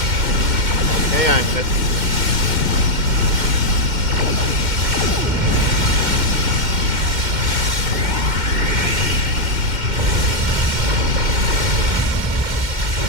Okay, I missed.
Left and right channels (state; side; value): late; left; 2.1 ms